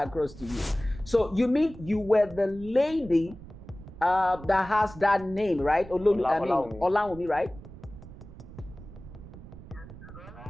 to you. So you mean you were the lady that has that name, right? Olaomi, right?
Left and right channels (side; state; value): right; noise; rumble, 16 dB below the sound